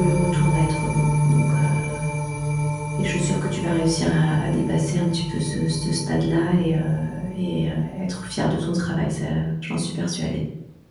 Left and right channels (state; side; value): identical; both; correlation 1.00